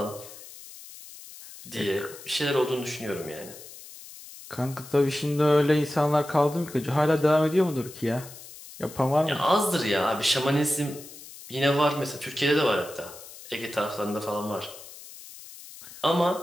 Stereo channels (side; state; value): left; noise; hiss, 16 dB below the sound